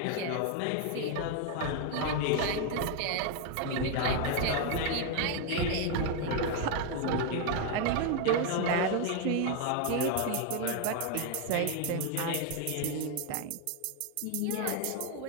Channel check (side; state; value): both; different; correlation 0.01